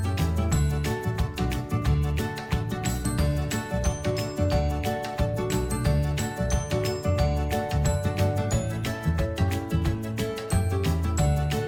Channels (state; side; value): identical; both; correlation 1.00